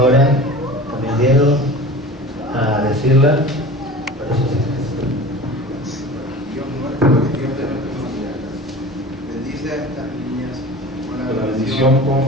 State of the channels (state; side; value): normal; both; correlation 0.37